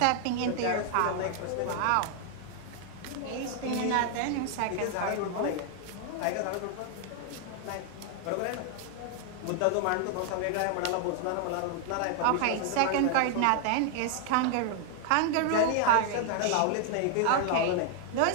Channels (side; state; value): both; different; correlation 0.00